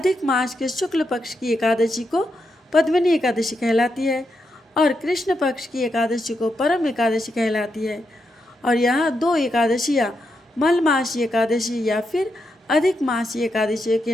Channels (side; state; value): both; normal; correlation 0.83